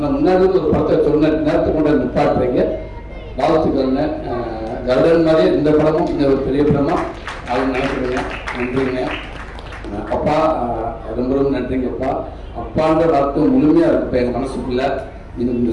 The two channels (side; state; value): both; identical; correlation 1.00